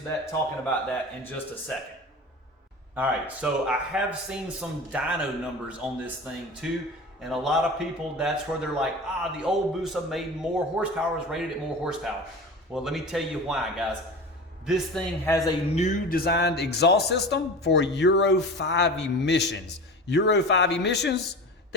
that, talking about that in just a second. All right, so I have seen some dyno numbers on this thing too, and a lot of people, that's where they're like, the old Busa made more horsepower, is rated at more horsepower. Well, let me tell you why, guys. This thing has a new designed exhaust system for Euro 5 emissions. Euro 5 emissions,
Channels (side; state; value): both; normal; correlation 0.32